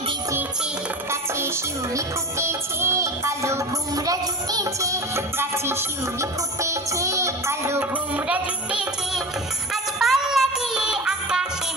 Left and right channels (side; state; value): both; normal; correlation 0.30